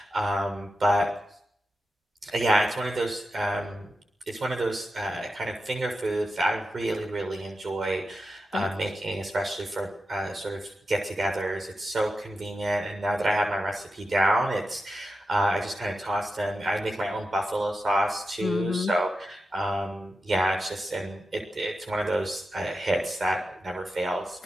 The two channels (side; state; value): both; normal; correlation 0.89